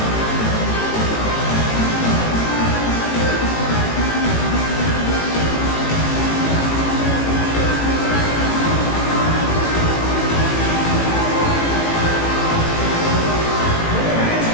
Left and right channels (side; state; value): right; late; 18 ms